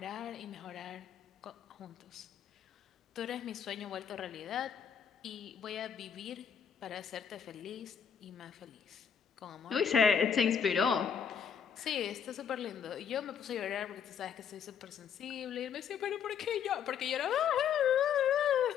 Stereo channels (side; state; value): right; quieter; 7.6 dB